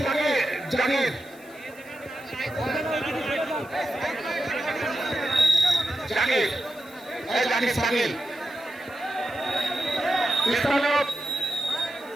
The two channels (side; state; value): left; noise; hiss, 25 dB below the sound